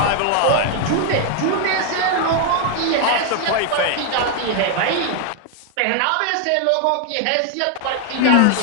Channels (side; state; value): both; different; correlation 0.00